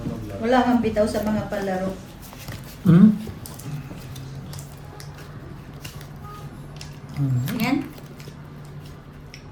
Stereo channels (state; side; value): identical; both; correlation 1.00